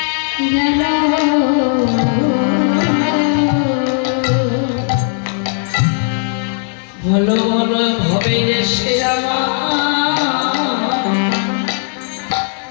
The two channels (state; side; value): silent; right; digital silence